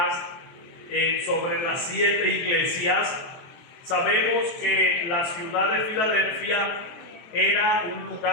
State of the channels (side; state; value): right; late; 23 ms